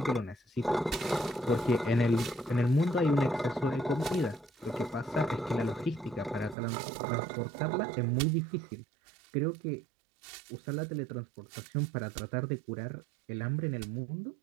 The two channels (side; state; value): left; drops out; at 6.6 s